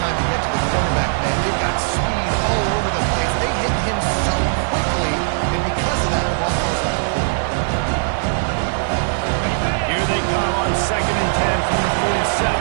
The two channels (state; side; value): silent; left; digital silence